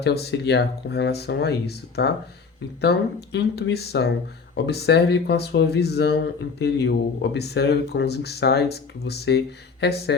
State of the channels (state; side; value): quieter; right; 5.1 dB